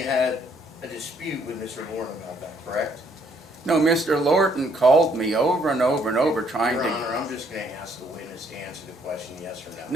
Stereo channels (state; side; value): normal; both; correlation 0.68